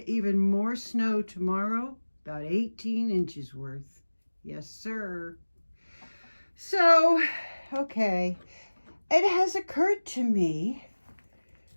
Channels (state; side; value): inverted; both; correlation -1.00